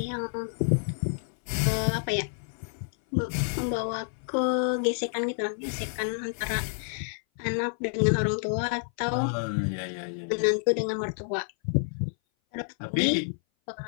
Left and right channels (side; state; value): right; silent; 58 dB below the other